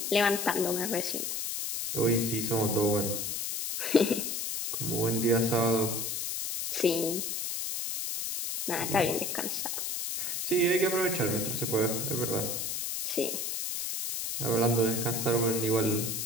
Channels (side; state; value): left; noise; hiss, 2 dB below the sound